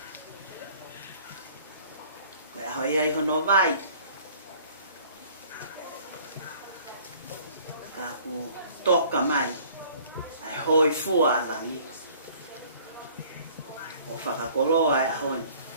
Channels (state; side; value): inverted; both; correlation -0.54